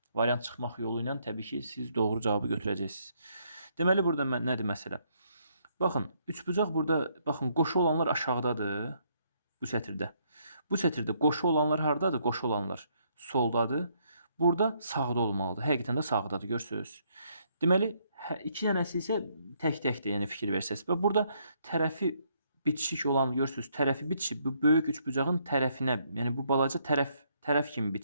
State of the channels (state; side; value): inverted; both; correlation -0.71